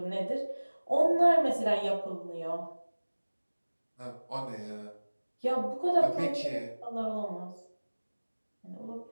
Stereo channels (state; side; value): inverted; both; correlation -1.00